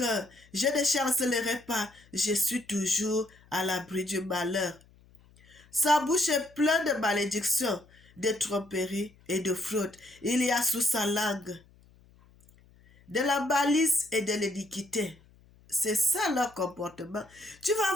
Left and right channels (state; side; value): noise; left; hum, 28 dB below the sound